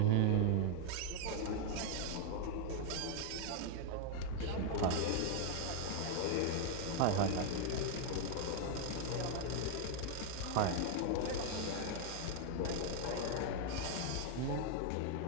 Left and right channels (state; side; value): different; both; correlation 0.00